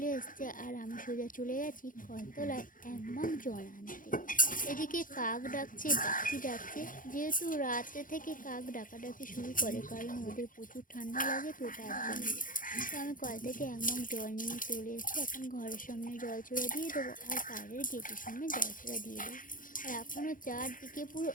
এসছে, আর আমি সোজা চলে গেছি কলতলায় এক মগ জল আনতে। এদিকে কাক ডাকছে, পাখি ডাকছে। যেহেতু রাতে থেকে কাক ডাকাডাকি শুরু করে, কারণ ওদের প্রচুর ঠান্ডা লাগে, তো তার জন্য। তো আমি কল থেকে এক মগ জল নিয়ে চলে এসেছি। এখন ঘরের সামনে জলচূড়া দিয়ে দেবো, আর বাইরের গেটের সামনে জলচূড়া দিয়ে দেবো। আর এখনও চারদিকে পুরো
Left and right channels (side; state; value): right; late; 0.39 ms